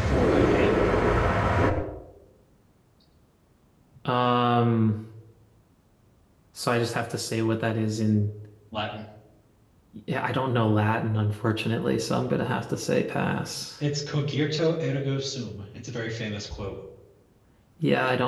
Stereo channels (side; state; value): both; identical; correlation 1.00